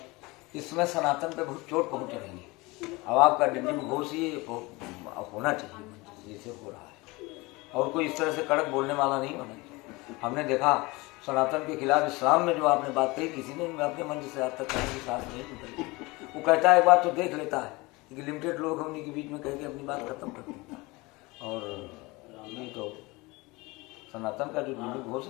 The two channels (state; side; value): quieter; right; 23.5 dB